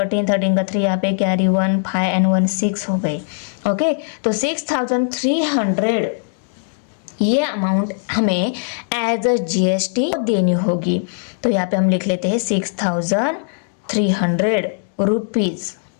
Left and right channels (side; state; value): right; silent; digital silence